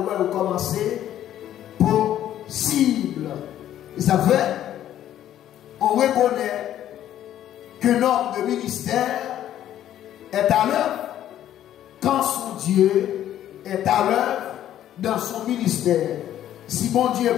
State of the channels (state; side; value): quieter; right; 11.7 dB